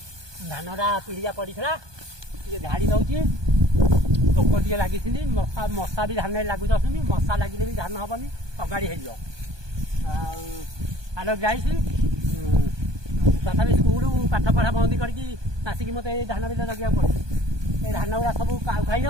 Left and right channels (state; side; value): late; left; 1.2 ms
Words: ଧାନଟା ପିଡ଼ିଆ ପଡ଼ିଥିଲା ଟିକେ ଝାଡ଼ି ଦଉଛି। ପୋକ ଟିକେ ଲାଗିଛନ୍ତି, ମଶା ବି ଧାନରେ ଲାଗୁ ଯାଉଛନ୍ତି। ମଶା ଲାଗିଲେ ବି ଧାନ ହବନି, ଅଗାଡ଼ି ହେଇଯିବ। ଆଉ ଆଲୋ ଯାଇଛି ତଥାପି ସ୍କୁଲ ପାଠ ପଢ଼ା ବନ୍ଦ କରିକି ଆସିକି ମୋତେ ଏଇ ଧାନ ବିଲ ଜଗିବାକୁ ପଡ଼ୁଛି। ଏ ଧାନ ଗୁଡ଼ା ସବୁ କାଉ ଖାଇ